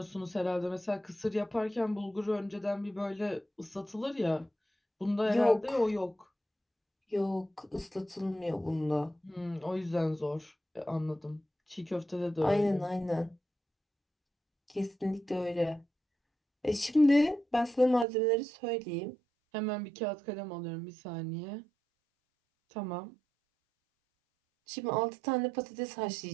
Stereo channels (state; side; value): drops out; left; at 18.1 s